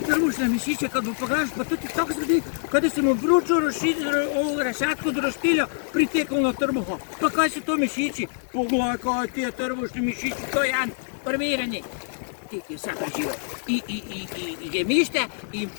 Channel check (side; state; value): right; silent; 59 dB below the other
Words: mišiće kad mu pogledaš, pa to ti tako sredi kada se mu vruću ovu rešetku do roštilja pritekao na trbuha. Pa kaj su to mišići? Pogledaj kaj ti je trbušni mišići, to je jedan armiranje. Ti je sad preživio i gemište, i